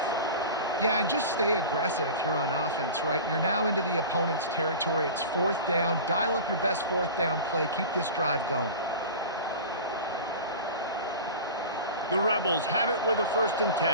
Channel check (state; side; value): inverted; both; correlation -0.33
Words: Yeah, and just stay aggressive if you're on offense, right? You're now into the opponent's territory. It's 4th down. Dial up your best 4th down play. Keep this drive going. The Rebels have it with a 1st and